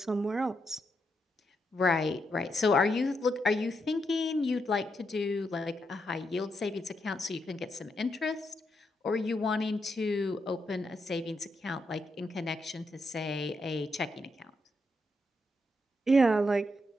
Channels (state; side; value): normal; both; correlation 0.81